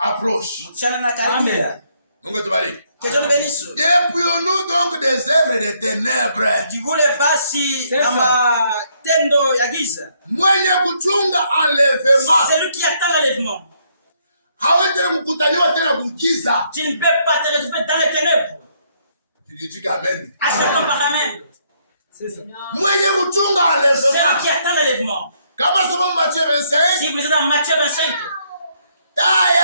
mchana na karibia. Mungu atubariki. Que Dieu nous bénisse. Dépouillons-nous donc des œuvres des ténèbres. Jivule basi C'est na matendo ya giza. Mwenye kuchunga enlèvement Celui qui attend l'enlèvement. hawezi tena kukutaniwa tena kugiza. Tu ne peux pas te retrouver dans les ténèbres. Tulitika amen. Acceptons par amen. C'est ça. Mwenye kuchunga Celui enlèvement. qui attend l'enlèvement. Kama soma Matthieu 25, Si vous lisez dans Matthieu 25,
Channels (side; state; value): both; inverted; correlation -0.71